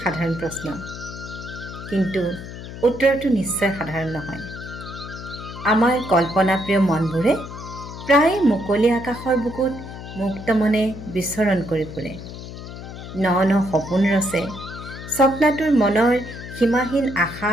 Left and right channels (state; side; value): noise; left; hum, 11 dB below the sound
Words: সাধাৰণ প্ৰশ্ন, কিন্তু উত্তৰটো নিশ্চয় সাধাৰণ নহয়। আমাৰ কল্পনাপ্ৰিয় মনবোৰে প্ৰায় মুকলি আকাশৰ বুকুত মুক্ত মনে বিচৰণ কৰি ফুৰে। ন ন সপোন ৰচে, স্বপ্নাতুৰ মনৰ সীমাহীন আশা